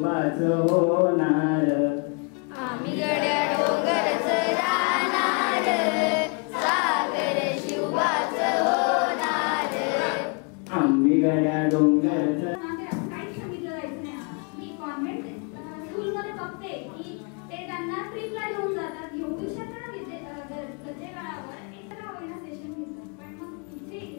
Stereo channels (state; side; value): quieter; right; 35.2 dB